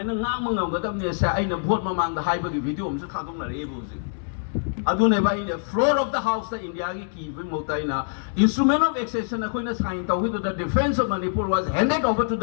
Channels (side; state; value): right; silent; digital silence